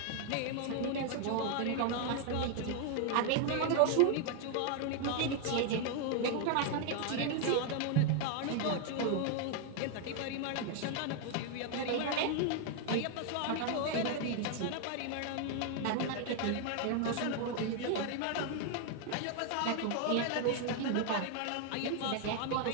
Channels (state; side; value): different; both; correlation 0.00